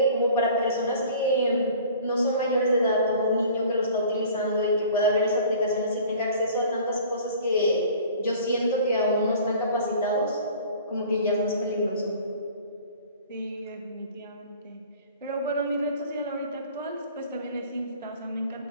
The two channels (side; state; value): both; inverted; correlation -0.47